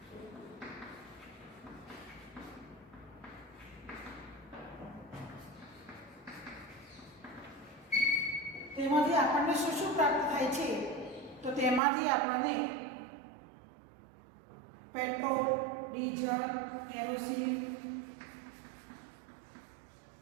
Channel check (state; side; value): drops out; left; at 11.8 s